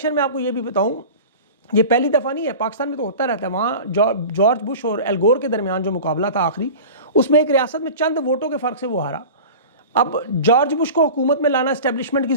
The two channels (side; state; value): both; inverted; correlation -0.35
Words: میں آپ کو یہ بھی بتاؤں، یہ پہلی دفعہ نہیں ہے، پاکستان میں تو ہوتا رہتا ہے، وہاں جارج بش اور ایل گور کے درمیان جو مقابلہ تھا آخری، اس میں ایک ریاست میں چند ووٹوں کے فرق سے وہ ہارا۔ اب جارج بش کو حکومت میں لانا اسٹیبلشمنٹ کی